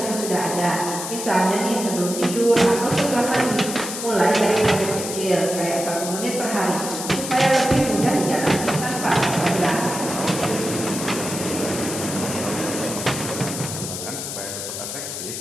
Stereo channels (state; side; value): noise; left; hiss, 6 dB below the sound